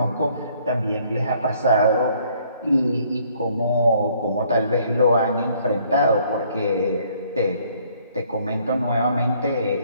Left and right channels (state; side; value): inverted; both; correlation -0.63